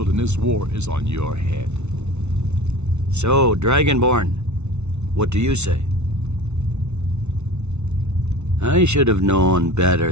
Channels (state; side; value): late; left; 0.82 ms